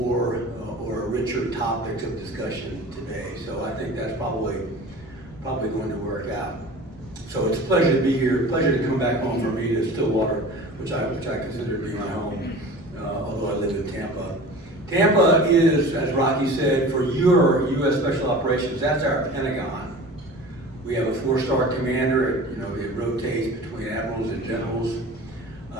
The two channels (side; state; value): right; noise; rumble, 23 dB below the sound